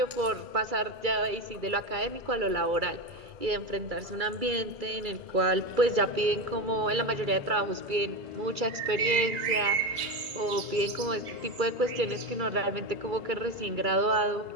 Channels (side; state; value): left; late; 2.3 ms